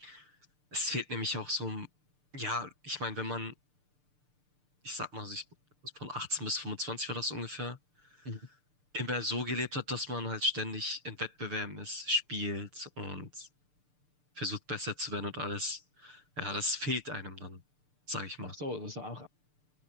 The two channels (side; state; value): left; late; 6.7 ms